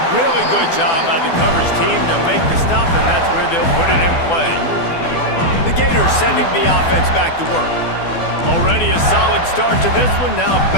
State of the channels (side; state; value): right; late; 12 ms